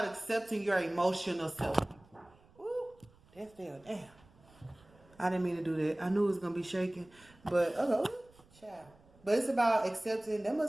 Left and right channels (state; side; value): noise; right; rumble, 28 dB below the sound